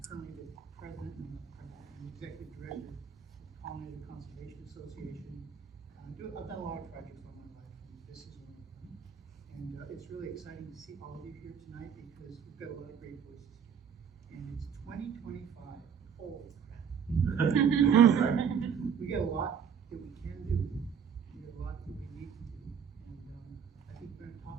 currently the president and the executive director of the Pollinator Conservation Association. I've done a lot of projects all my life, and this is one of them. And it's really exciting to see all of you here tonight because we've got a lot of great voices here. And it's 2025. Holy crap. We got a lot that we can do. We got a lot that we need to do. And I think we're going to talk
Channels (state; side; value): quieter; left; 7.3 dB